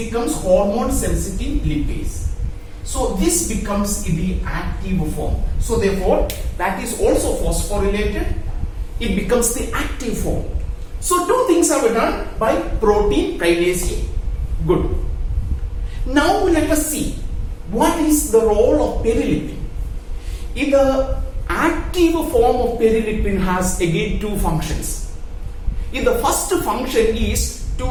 hormone sensitive lipase. So this becomes the active form. So therefore that is also phosphorylated. It becomes the active form. So two things are done by protein kinase A. Good. Now let us see what is the role of perilipin. In the active form of perilipin has again two functions. In the first function is to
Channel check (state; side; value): identical; both; correlation 1.00